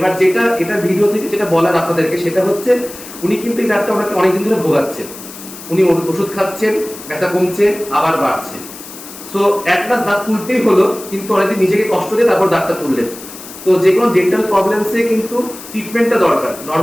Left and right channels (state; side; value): noise; left; hiss, 15 dB below the sound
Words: যেটা এটা ভিডিও থেকে যেটা বলার আপনাদেরকে সেটা হচ্ছে উনি কিন্তু এই দাঁতটা ওনাকে অনেকদিন ধরে ভোগাচ্ছে, উনি ওষুধ খাচ্ছেন, ব্যথা কমছে, আবার বাড়ছে। সো অ্যাট লাস্ট দাঁত তুলতেই হলো, কিন্তু অনেকদিন নিজেকে কষ্ট দিয়ে তারপর দাঁতটা তুললেন। তো যে কোনো ডেন্টাল প্রবলেমসে কিন্তু ট্রিটমেন্টটা দরকার,